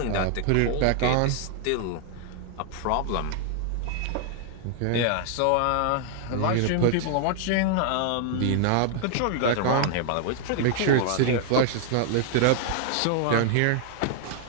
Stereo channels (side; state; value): both; different; correlation 0.00